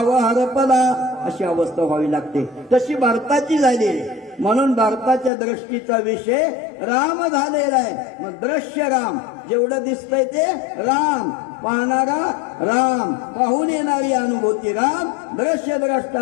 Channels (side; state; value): right; drops out; at 5.3 s